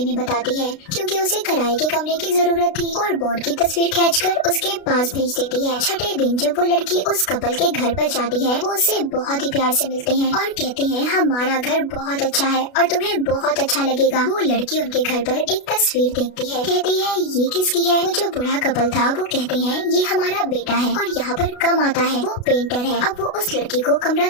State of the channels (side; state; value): right; late; 32 ms